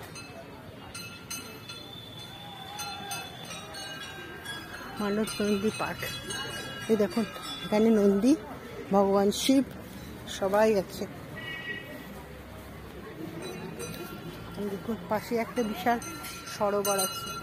মানস নন্দী পার্ক, এই দেখুন এখানে নন্দী, ভগবান শিব সবাই আছে। দেখুন পাশে একটা বিশাল সরোবর আছে,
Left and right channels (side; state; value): both; identical; correlation 1.00